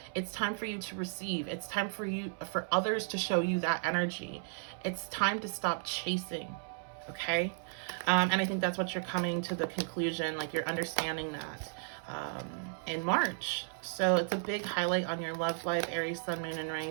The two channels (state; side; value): silent; left; 55 dB below the other